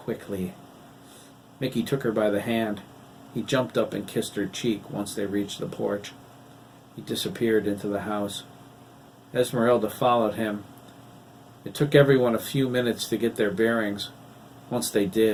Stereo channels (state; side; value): identical; both; correlation 1.00